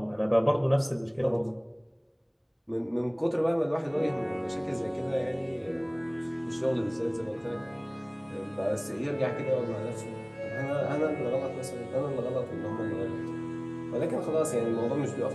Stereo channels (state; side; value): identical; both; correlation 1.00